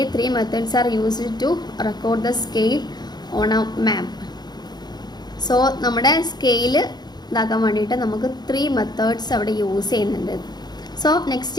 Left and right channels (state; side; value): late; right; 0.20 ms